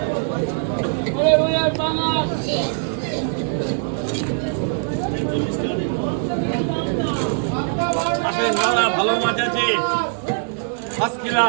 আসেন দাদা, ভালো মাছ আছে, ফার্স্ট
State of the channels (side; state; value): left; silent; digital silence